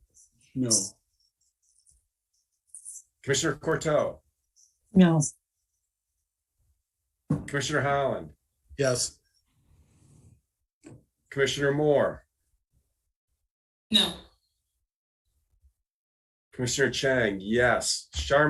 No. Commissioner Courteau. No. Commissioner Holland. Yes. Commissioner Moore. No. Commissioner Chang, yes.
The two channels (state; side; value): identical; both; correlation 1.00